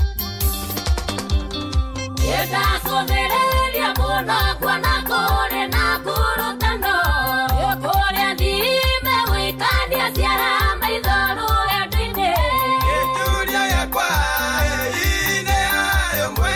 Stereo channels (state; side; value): identical; both; correlation 1.00